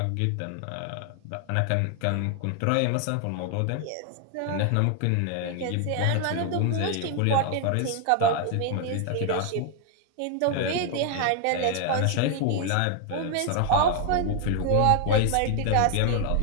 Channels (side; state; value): both; different; correlation 0.00